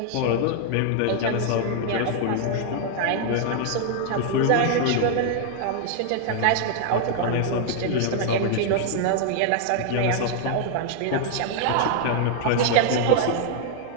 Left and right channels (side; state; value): both; different; correlation 0.00